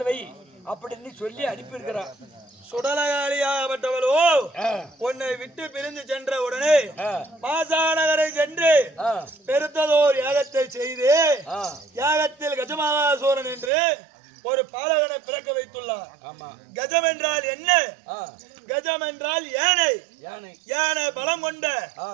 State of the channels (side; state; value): left; drops out; at 13.7 s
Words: வை அப்படின்னு சொல்லி அனுப்பியிருக்கிறான். சுடலகாலியாகப்பட்டவளோ உன்னை விட்டு பிரிந்து சென்ற உடனே மாசாநகரை சென்று பெருத்ததோர் யாகத்தை செய்து யாகத்தில் கஜமகாசூரன் என்று ஒரு பாலகனை பிறக்க வைத்துள்ளார். கஜம் என்றால் என்ன? கஜம் என்றால் யானை. யானை பலம் கொண்ட